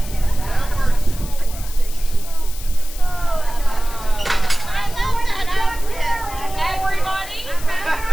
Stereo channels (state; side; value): noise; left; hiss, 14 dB below the sound